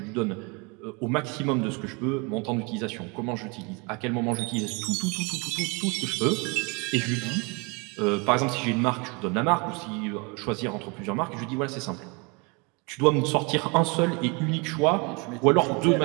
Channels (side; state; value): left; quieter; 30.0 dB